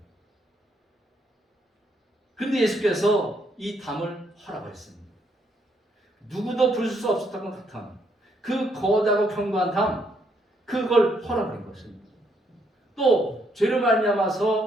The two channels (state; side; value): normal; both; correlation 0.73